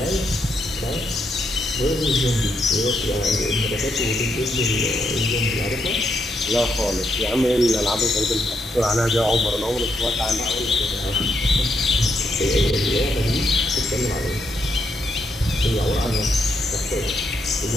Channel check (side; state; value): both; normal; correlation 0.79